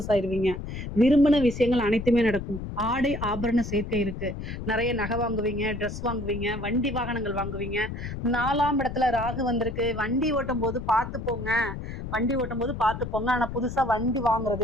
ஆயிருவீங்க. விரும்பின விஷயங்கள் அனைத்துமே நடக்கும். ஆடை ஆபரண சேர்க்கை இருக்கு. நிறைய நகை வாங்குவீங்க, ட்ரெஸ் வாங்குவீங்க, வண்டி வாகனங்கள் வாங்குவீங்க. 4ஆம் இடத்துல ராகு வந்திருக்கு. வண்டி ஓட்டும் போது பார்த்து போங்க. ஆனா புதுசா வண்டி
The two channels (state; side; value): noise; left; rumble, 7 dB below the sound